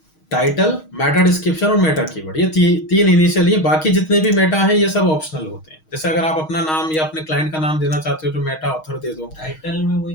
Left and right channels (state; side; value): late; right; 6.4 ms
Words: Title, Meta description और मेटा कीवर्ड, ये तीन इनिशियल, ये बाकी जितने भी मेटा हैं ये सब ऑप्शनल होते हैं। जैसे अगर आप अपना नाम या अपने क्लाइंट का नाम देना चाहते हो तो मेटा ऑथर दे दो। टाइटल में वही